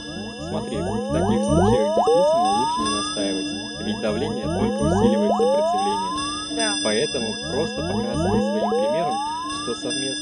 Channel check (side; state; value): both; identical; correlation 1.00